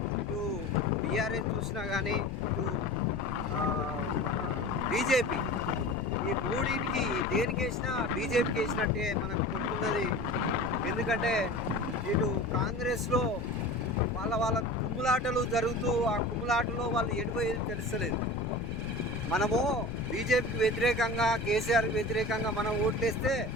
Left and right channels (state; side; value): noise; left; rumble, 9 dB below the sound